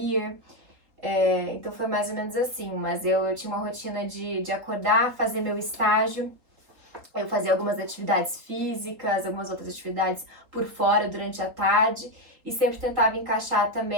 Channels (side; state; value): left; late; 3.8 ms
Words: Então foi mais ou menos assim, mas eu tinha uma rotina de acordar, fazer meu estágio, eu fazia algumas atividades físicas, algumas outras atividades por fora durante a tarde e sempre tentava encaixar